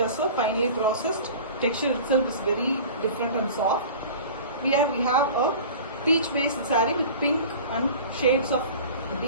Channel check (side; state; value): both; inverted; correlation -0.39